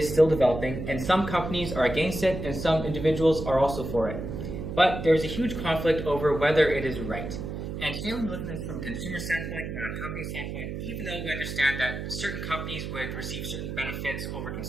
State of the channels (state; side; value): noise; right; hum, 6 dB below the sound